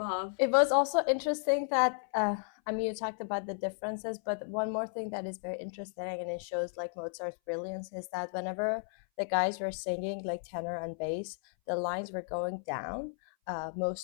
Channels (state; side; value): silent; right; 55 dB below the other